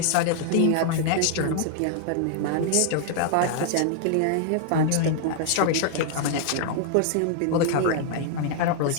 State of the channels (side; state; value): both; different; correlation 0.00